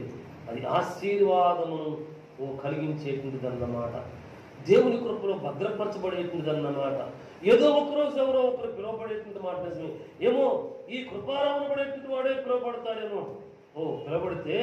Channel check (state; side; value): identical; both; correlation 1.00